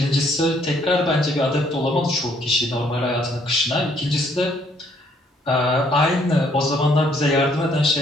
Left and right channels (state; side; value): normal; both; correlation 0.66